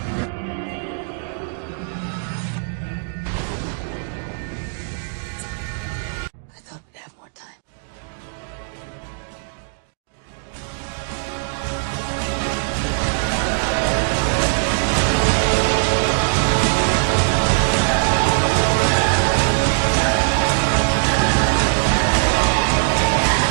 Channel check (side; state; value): left; silent; digital silence